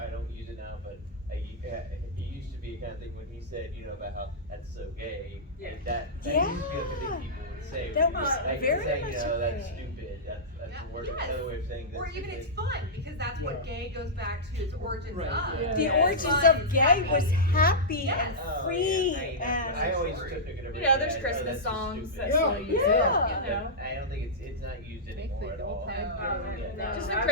don't use it now, but it used to be a kind of thing when he said, you know, about how that's so gay. Yeah. And that Yeah. used to be like a thing people would say. That when you was like, very saying, much you know, a that's thing. stupid. That's Yeah. a word, Yes. another way of saying that's Or even stupid. it's fun because that's what Yeah. gay goes back to its origins Right, of. yeah. The It's origins fun, of it's gay happy. was happy Yes. and Oh, free yeah, I and always took it You know, there's Christmas songs that still use it. Yeah. You know. I don't think it's not used anymore at all. No. Just the I-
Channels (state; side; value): normal; both; correlation -0.12